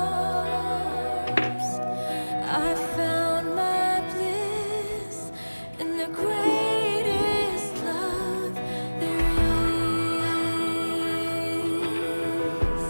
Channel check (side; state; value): both; inverted; correlation -1.00